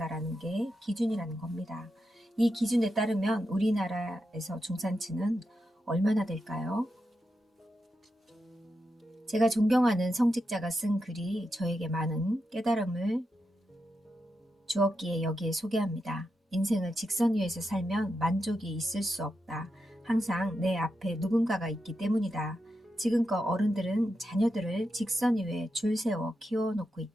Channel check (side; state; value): both; normal; correlation 0.87